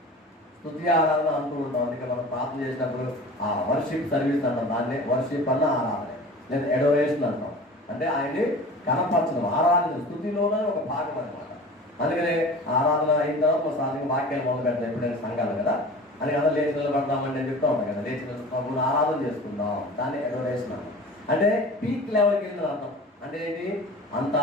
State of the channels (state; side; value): normal; both; correlation 0.39